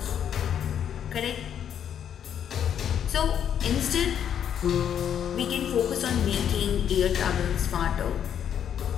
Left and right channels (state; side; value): quieter; right; 9.1 dB